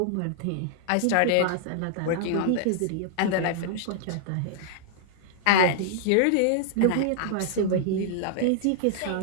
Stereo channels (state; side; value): different; both; correlation -0.01